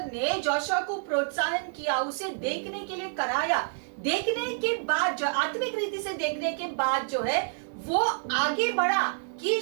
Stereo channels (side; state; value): left; silent; 59 dB below the other